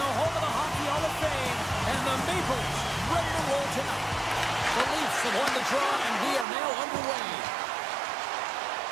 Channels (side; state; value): left; drops out; at 6.5 s